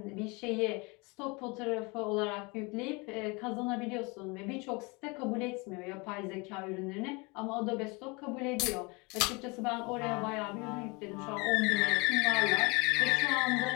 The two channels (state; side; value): quieter; right; 27.6 dB